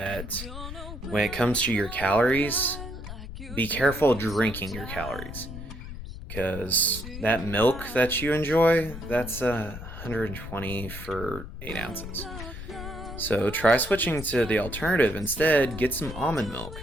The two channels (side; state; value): left; noise; rumble, 10 dB below the sound